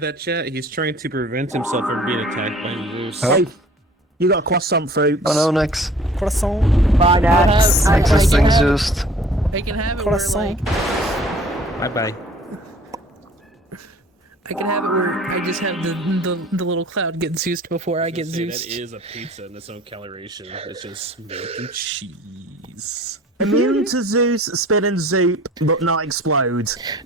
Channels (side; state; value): both; normal; correlation 0.50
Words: that, chat? He's trying to prevent himself from being attacked by Zeus. Oh. Hey, you got croissant fruits. Oh no, Nex. Croissant. Bye, Nex. Nex is being Zeused. I can have it where Croissant. like Bye bye. I can have it where I just have the little cloud get Zeused before I get That Zeused. is a pizza in its own coloration. It's just milk and cheese. Immune to Zeus, spin and zoop, but not explode.